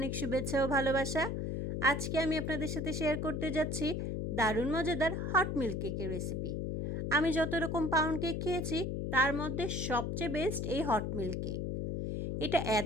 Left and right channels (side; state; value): left; noise; hum, 1 dB below the sound